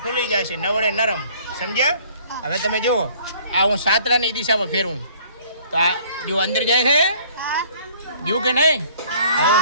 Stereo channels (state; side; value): inverted; both; correlation -0.55